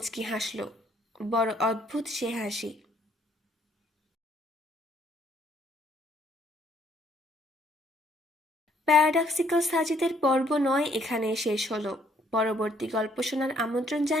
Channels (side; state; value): both; normal; correlation 0.66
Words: হাসল। বড় অদ্ভুত সে হাসি। প্যারাডক্সিক্যাল সাজিদের পর্ব 9 এখানে শেষ হলো। পরবর্তী গল্প শোনার আমন্ত্রণ